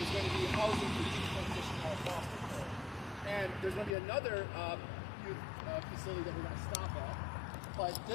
is going to be housing for youth transition out of foster care. And there's going to be another youth facility that we're going to stop at. But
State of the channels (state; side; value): drops out; right; at 4.0 s